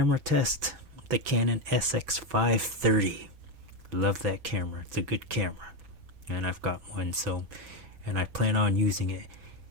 test, the Canon SX530. Love that camera. It's a good camera. And I've got one, and I plan on using it.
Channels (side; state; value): left; late; 6.0 ms